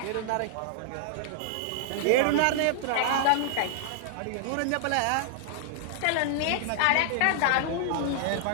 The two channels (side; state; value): both; different; correlation -0.01